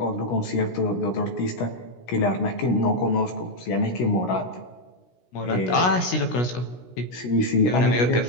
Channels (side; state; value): right; late; 16 ms